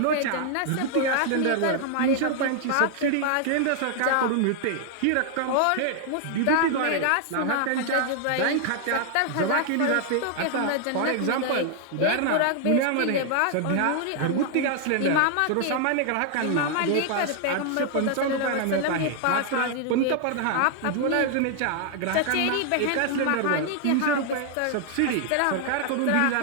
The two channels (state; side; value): different; both; correlation 0.00